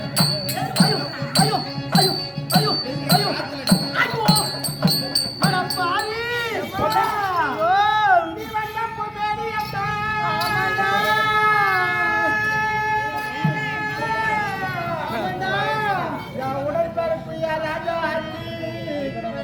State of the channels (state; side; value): identical; both; correlation 1.00